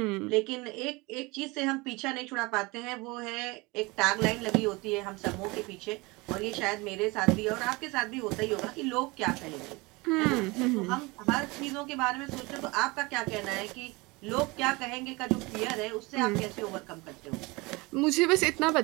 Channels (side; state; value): left; quieter; 24.6 dB